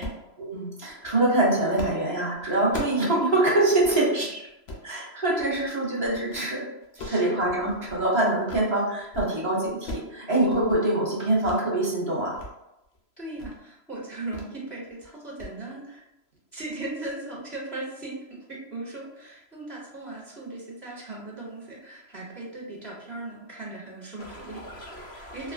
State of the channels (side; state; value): right; late; 3.0 ms